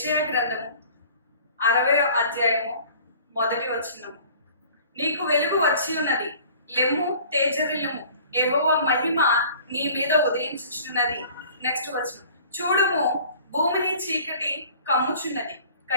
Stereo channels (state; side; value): inverted; both; correlation -0.49